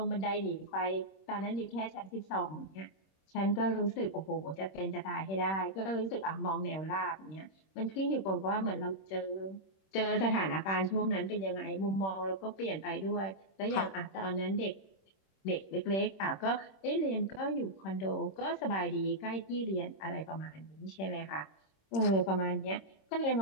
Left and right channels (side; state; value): right; late; 26 ms